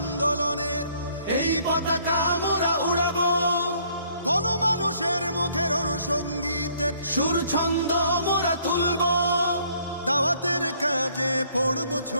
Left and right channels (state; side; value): inverted; both; correlation -0.63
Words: এই পতাকা আমরা উড়াবো, গণমানুষের মুখের অনুসঙ্গীতের সুর ছন্দ মোরা তুলবো। দাওয়াতের কাজে পড়বো